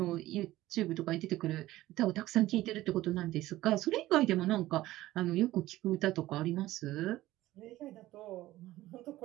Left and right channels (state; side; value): quieter; left; 16.2 dB